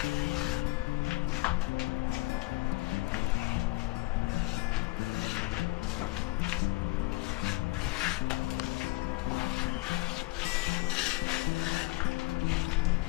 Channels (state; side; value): quieter; right; 21.9 dB